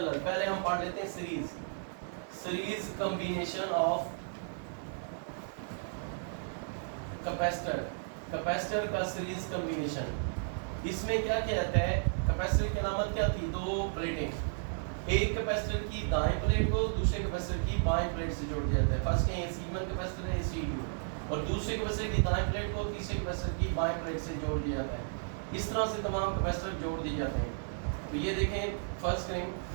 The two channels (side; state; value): left; silent; digital silence